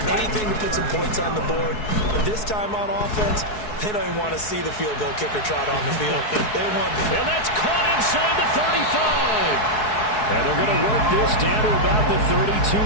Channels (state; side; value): late; right; 4.7 ms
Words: Anything to put some points on the board. But this time on offense, they don't even want to see the field goal kicker trot on the field. They want. And that's caught inside the 35. And they're going to work this down to about the